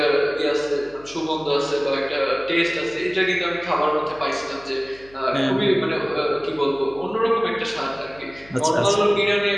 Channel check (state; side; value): noise; left; hum, 25 dB below the sound